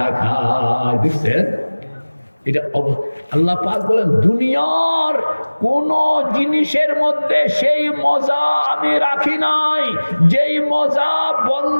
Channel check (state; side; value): inverted; both; correlation -1.00